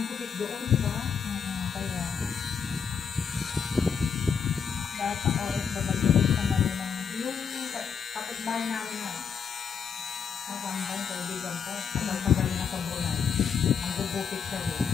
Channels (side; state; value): right; quieter; 6.8 dB